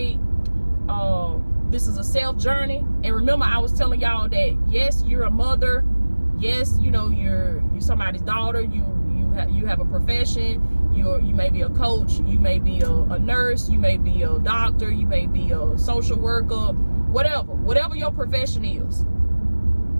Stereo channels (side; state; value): both; inverted; correlation -1.00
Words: this is a self journey. And remember, I was telling y'all that yes, you're a mother. Yes, you know, you're somebody's daughter. You have a profession. You may be a coach. You may be a nurse. You may be a doctor. You may be a social worker. Whatever your profession is,